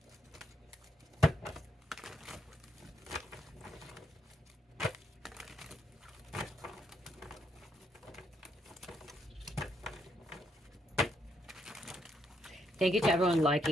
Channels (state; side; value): normal; both; correlation 0.76